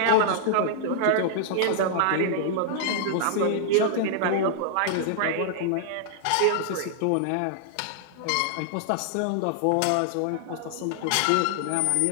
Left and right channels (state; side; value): different; both; correlation -0.01